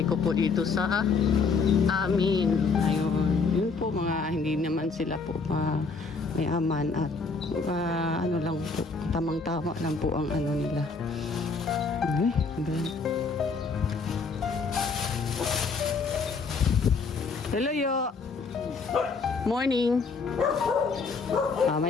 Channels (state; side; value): quieter; right; 4.6 dB